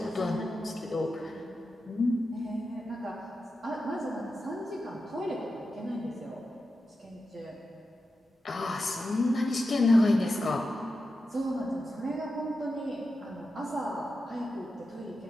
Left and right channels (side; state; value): both; normal; correlation 0.90